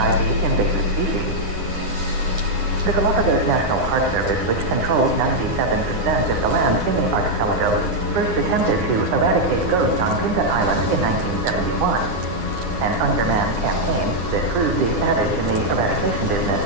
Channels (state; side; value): late; left; 9.6 ms